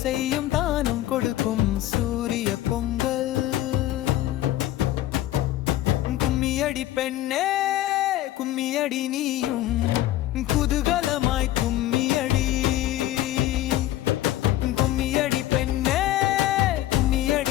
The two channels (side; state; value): right; quieter; 14.4 dB